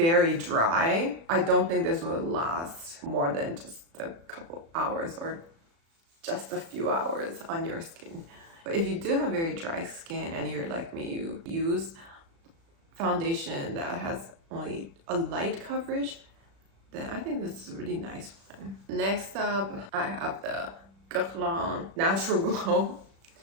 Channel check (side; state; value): left; late; 36 ms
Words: dry, I don't think this will last more than just a couple hours or just a few hours on your skin. But if you do have very dry skin and you're like me, you use foundation that has only a light coverage, then I think this is a really nice one. Next up, I have the Guerlain Natural Glow